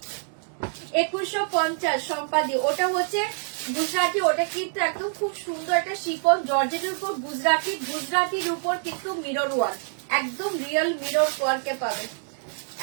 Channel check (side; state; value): left; silent; digital silence